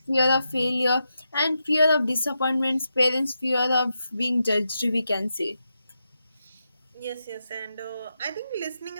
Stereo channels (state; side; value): inverted; both; correlation -0.86